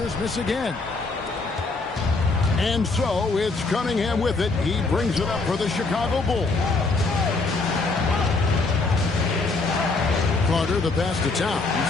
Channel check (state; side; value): quieter; right; 3.7 dB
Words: miss again. And so it's Cunningham with it. He brings it up for the Chicago Bulls. Carter, the pass to Towns.